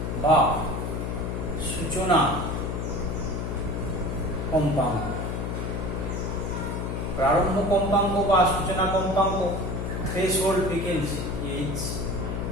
বা সূচনা কম্পাঙ্ক। প্রারম্ভ কম্পাঙ্ক বা সূচনা কম্পাঙ্ক, threshold frequency,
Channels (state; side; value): noise; left; hum, 2 dB below the sound